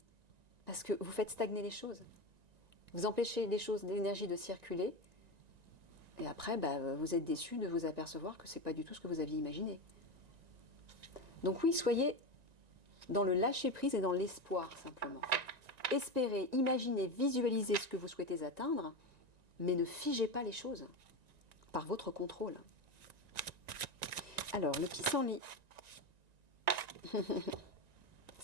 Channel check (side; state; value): left; late; 1.9 ms